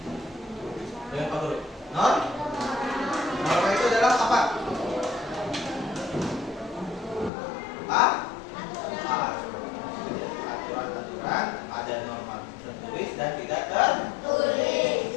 Dengan Pak Guru. Norma itu adalah apa? Aturan-aturan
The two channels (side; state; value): right; drops out; at 7.3 s